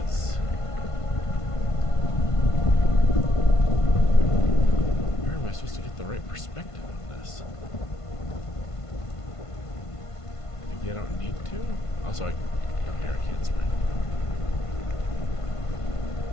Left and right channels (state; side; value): late; right; 1.5 ms